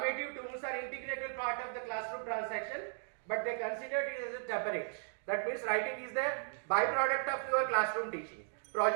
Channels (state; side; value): silent; left; 53 dB below the other